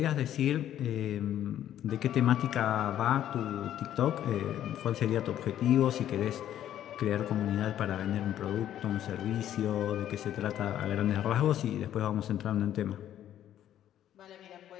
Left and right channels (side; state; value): right; quieter; 11.4 dB